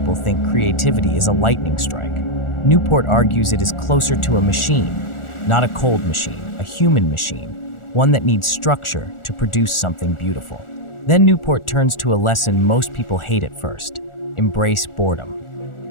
think creativity is a lightning strike. Newport argues it is closer to a machine, not a cold machine, a human machine, one that needs structure to produce something beautiful. Then Newport turns to a lesson most people hate at first: embrace boredom.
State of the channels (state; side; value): late; right; 1.4 ms